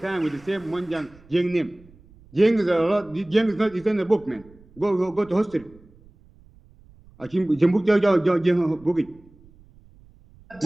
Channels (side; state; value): right; noise; rumble, 26 dB below the sound